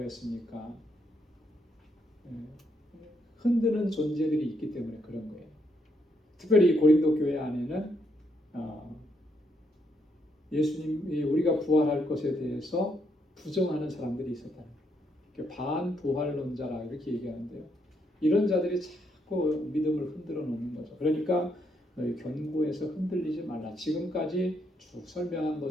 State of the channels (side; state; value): both; normal; correlation 0.76